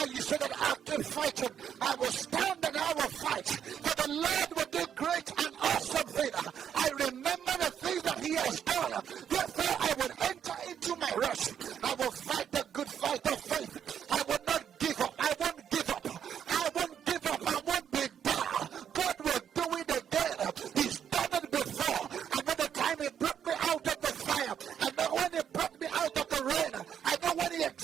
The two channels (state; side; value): quieter; left; 8.7 dB